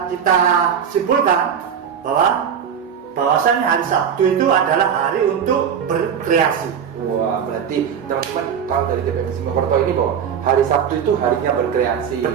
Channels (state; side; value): quieter; left; 7.9 dB